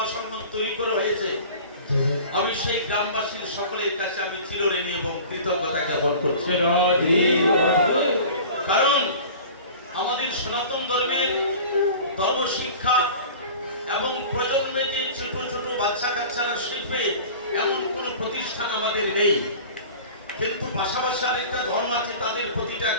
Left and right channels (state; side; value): inverted; both; correlation -0.40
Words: সঙ্গম তৈরি করে হয়েছে। আমি সেই গ্রামবাসীর সকলের কাছে আমি চিরঋণী এবং কৃতজ্ঞতা জ্ঞাপন করছি। কারণ আমাদের সনাতন ধর্মের ধর্ম শিক্ষা এবং প্রজন্মে যে ছোট ছোট বাচ্চা কাচ্চারা শিখবে এমন কোনো প্রতিষ্ঠান আমাদের নেই। কিন্তু পাশাপাশি আরেকটা ধর্ম আছে, তাদের প্রতিটা